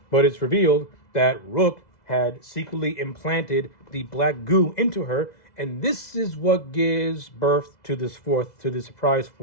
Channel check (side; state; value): right; late; 2.0 ms